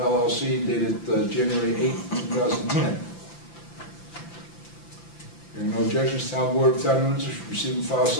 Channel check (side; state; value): right; late; 5.9 ms